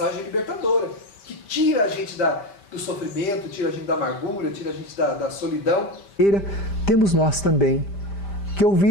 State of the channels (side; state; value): right; late; 5.0 ms